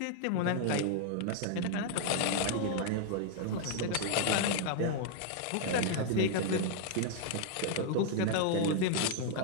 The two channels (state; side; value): different; both; correlation 0.00